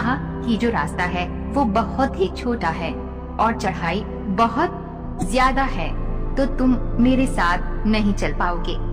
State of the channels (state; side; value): identical; both; correlation 1.00